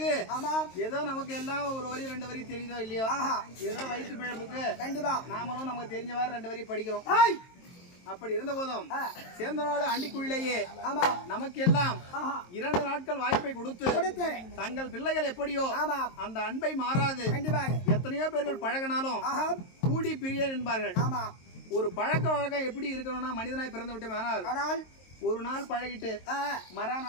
ஏதோ நமக்கு எல்லாம் ஒரு வரி 2 வரி தெரியுதோ இல்லையோ ஏதோ வயிற்று பிழப்புக்கு நாமளும் நமக்கு தெரிஞ்சவாறு 2 வரி படிக்கிறோம். அப்படி இருந்த போதும் சேந்தநாடு ஆண்டிக்குழியிலேயே நமக்கு எல்லாம் 2 நாட்கள் வாய்ப்பை கொடுத்து தங்கள் பிள்ளைகள் எப்படியோ அந்த அன்பை மாறாது எத்தனையோ பேர்கள் பழகினாலும் கூடி பிரியன் என்பார்கள். ஒரு பழக்க வழக்கம் எப்படி இருக்கணும்னா மனிதனாய் பிறந்து விட்டோம் ஆனால் ஒரு நாள் பழகிட்டு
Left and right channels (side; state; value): right; late; 23 ms